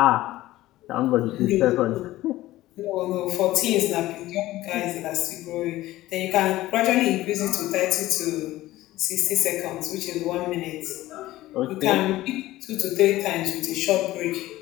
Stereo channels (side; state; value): right; quieter; 16.4 dB